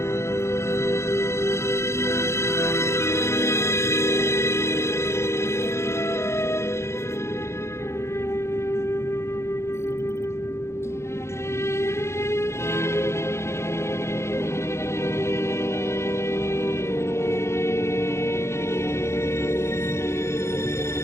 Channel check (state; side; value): late; right; 0.13 ms